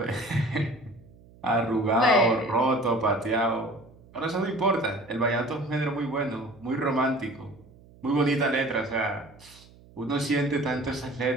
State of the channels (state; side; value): noise; right; hum, 24 dB below the sound